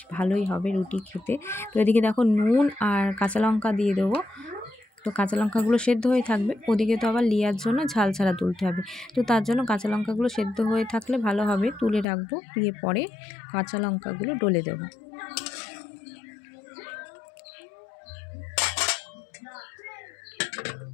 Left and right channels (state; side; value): drops out; right; at 12.1 s